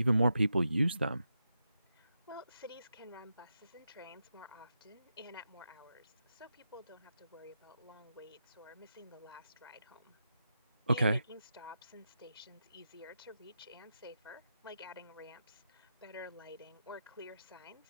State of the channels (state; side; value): inverted; both; correlation -0.86